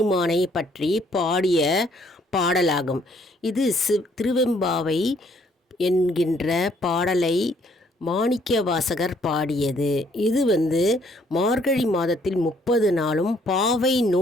பற்றி பாடிய பாடலாகும். இது திருவெம்பாவை என்கின்ற பாடலை மாணிக்கவாசகர் பாடியது. இது மார்கழி மாதத்தில் 30 நாளும் பாவை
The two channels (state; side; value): normal; both; correlation 0.65